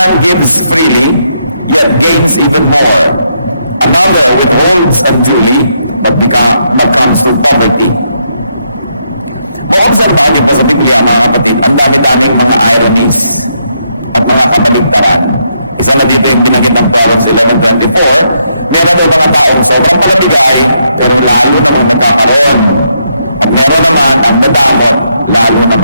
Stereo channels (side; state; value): both; inverted; correlation -0.77